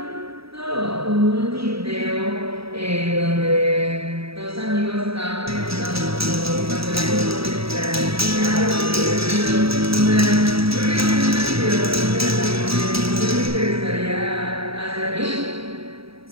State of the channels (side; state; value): left; late; 0.77 ms